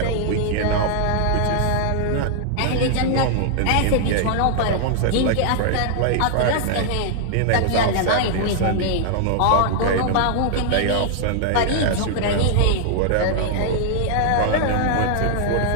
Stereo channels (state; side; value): different; both; correlation -0.01